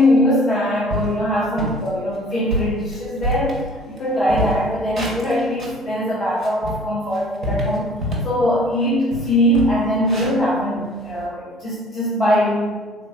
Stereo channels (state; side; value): normal; both; correlation 0.51